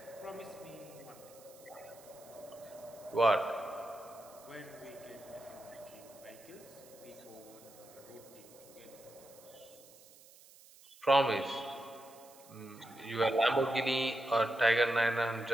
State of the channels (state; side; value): noise; right; hiss, 22 dB below the sound